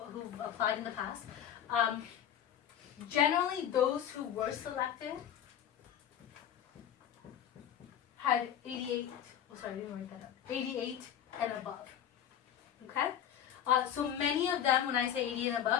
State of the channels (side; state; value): right; quieter; 9.8 dB